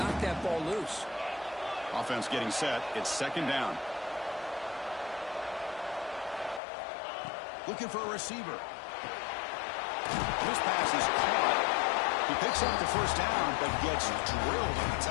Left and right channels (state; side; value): drops out; right; at 6.6 s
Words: that ball loose. Offense getting set. It's 2nd down. Looking for a receiver. This pass is caught. He picks up the first down, but gets drilled on the